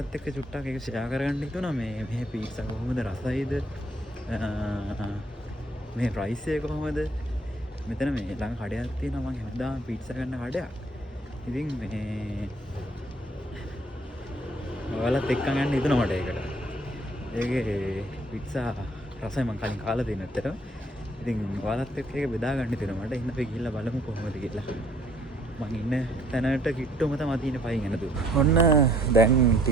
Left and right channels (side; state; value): both; normal; correlation 0.63